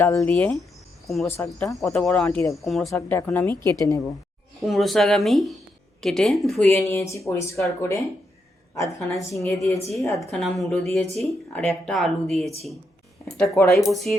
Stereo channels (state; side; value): normal; both; correlation 0.81